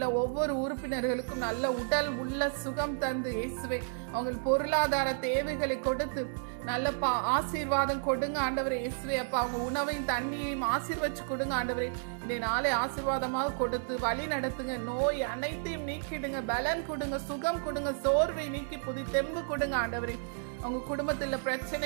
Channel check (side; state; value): left; silent; digital silence